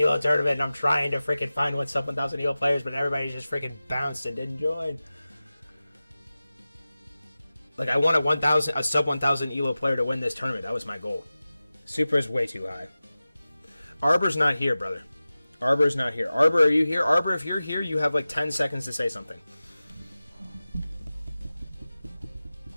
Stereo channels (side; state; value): both; inverted; correlation -0.96